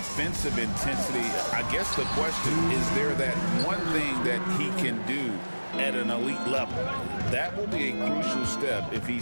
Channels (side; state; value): both; inverted; correlation -1.00